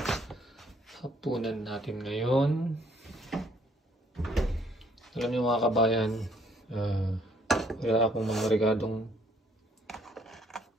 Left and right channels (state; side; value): normal; both; correlation 0.64